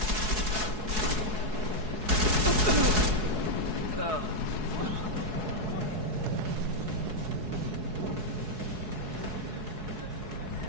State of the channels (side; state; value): left; late; 4.7 ms